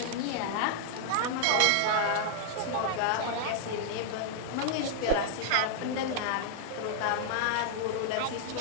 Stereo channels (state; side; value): different; both; correlation -0.01